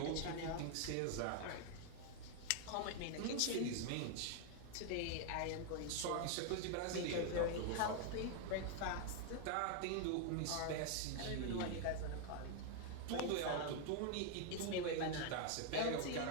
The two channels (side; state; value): both; different; correlation 0.00